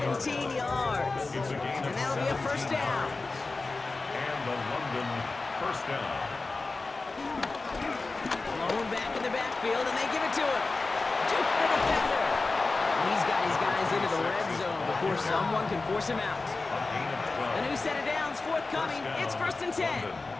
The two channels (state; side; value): quieter; right; 3.6 dB